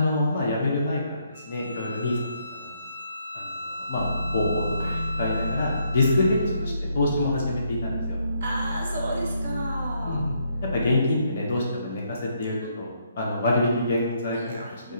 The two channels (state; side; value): inverted; both; correlation -0.74